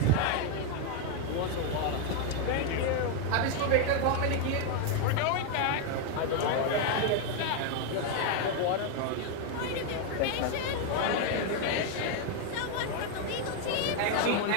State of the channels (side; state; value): both; different; correlation 0.01